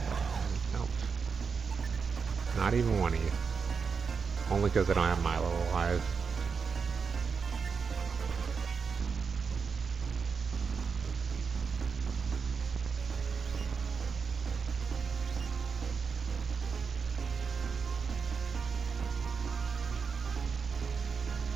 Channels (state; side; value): quieter; left; 5.6 dB